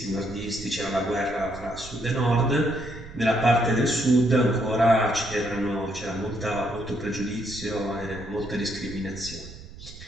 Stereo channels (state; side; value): noise; right; rumble, 15 dB below the sound